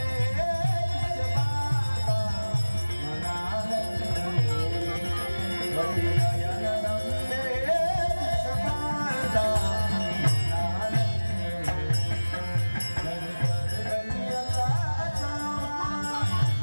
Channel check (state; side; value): inverted; both; correlation -1.00